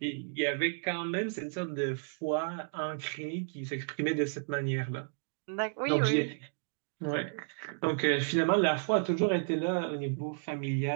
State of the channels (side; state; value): left; silent; digital silence